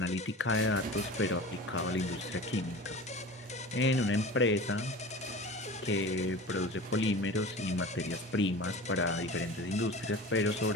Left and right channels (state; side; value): normal; both; correlation 0.35